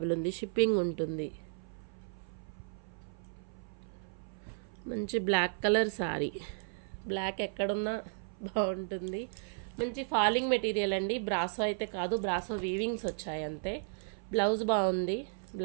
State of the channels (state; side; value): silent; left; 55 dB below the other